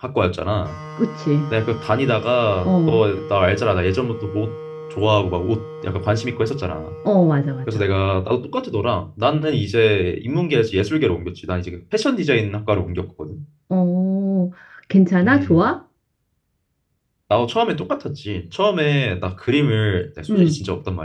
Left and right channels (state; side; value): identical; both; correlation 1.00